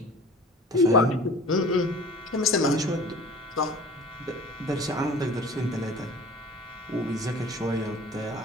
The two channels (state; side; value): normal; both; correlation 0.43